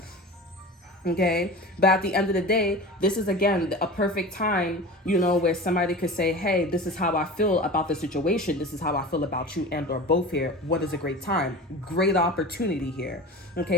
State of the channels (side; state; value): both; normal; correlation 0.33